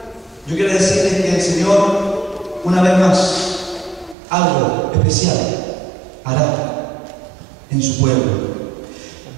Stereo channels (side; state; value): left; drops out; at 4.2 s